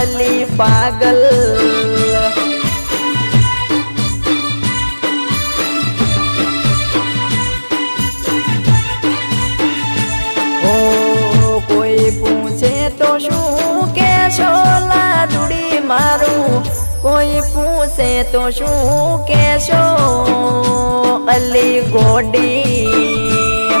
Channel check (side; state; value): both; inverted; correlation -1.00